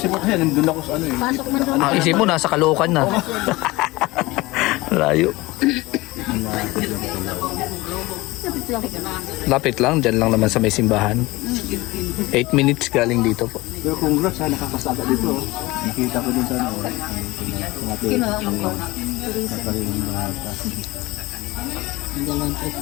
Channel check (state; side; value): quieter; right; 20.8 dB